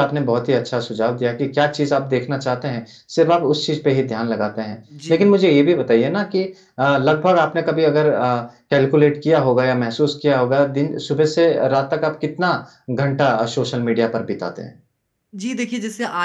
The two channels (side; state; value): both; identical; correlation 1.00